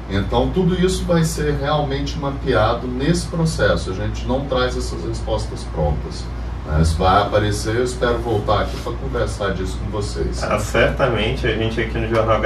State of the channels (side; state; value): both; identical; correlation 1.00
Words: Então, tudo isso vai ser realmente mapeado nesse processo. A gente não traz essas respostas prontas. Isso vai aparecer, eu espero voltar aqui para conversar disso com vocês. Certamente, a gente aqui no Jornal